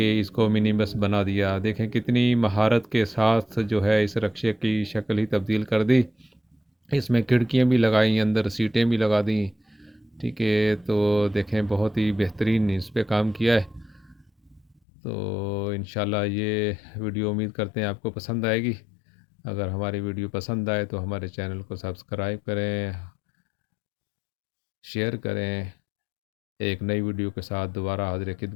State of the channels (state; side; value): drops out; right; at 14.8 s